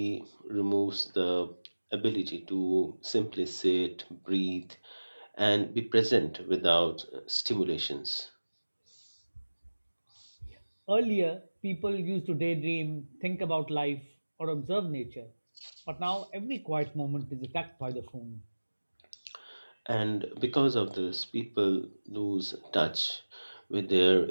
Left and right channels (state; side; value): inverted; both; correlation -1.00